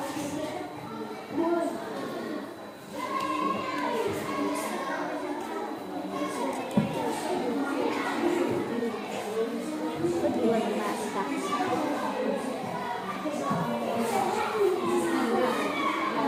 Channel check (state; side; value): identical; both; correlation 1.00